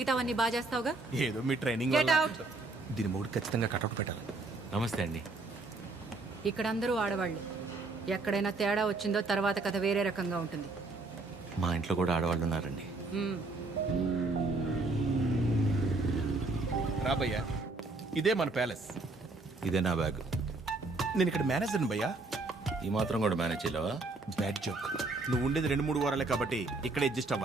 బాగా చేస్తావుగా. ఏదో మీ ట్రైనింగ్. దీని మూడు ఖచ్చితంగా కటౌట్ పెట్టాలి. నమస్తే అండి. ఇక్కడ అందరూ ఆడవాళ్ళు. ఎక్కడైనా తేడా వచ్చిందో తర్వాత కథ వేరే రకంగా ఉంటుంది. మా ఇంట్లో కూడా ఆడవాళ్ళు ఉన్నారండి. రాబయ్యా, ఇదే మన ప్యాలెస్. ఇదే నా బ్యాగ్. నేను ఇక్కడ మేనేజర్ని భయ్యా. ఈ మాత్రం కూడా మేనేజ్ చేయలేవా? Bad joke. నువ్వు ఉండేది 2-3 వారాలే కాబట్టి ఇక్కడ అడ్జస్ట్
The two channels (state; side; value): quieter; left; 3.3 dB